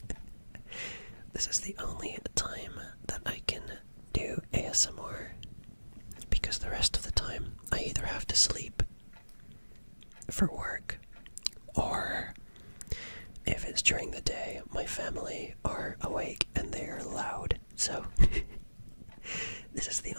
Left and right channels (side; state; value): both; inverted; correlation -1.00